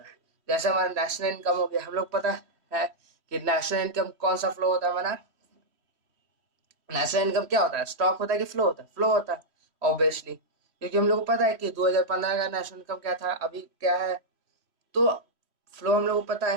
है। जैसे हमारा नेशनल इनकम हो गया, हम लोग पता है कि नेशनल इनकम कौन सा फ्लो होता है हमारा, नेशनल इनकम क्या होता है, स्टॉक होता है कि फ्लो होता है, फ्लो होता है ऑब्वियसली। क्योंकि हम लोग को पता है कि 2015 का नेशनल इनकम क्या था, अभी क्या है। तो फ्लो हम लोग को पता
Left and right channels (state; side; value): late; left; 3.1 ms